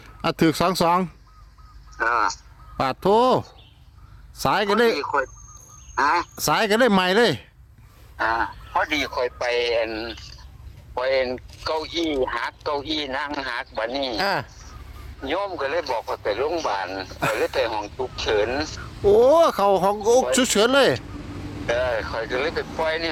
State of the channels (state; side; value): identical; both; correlation 1.00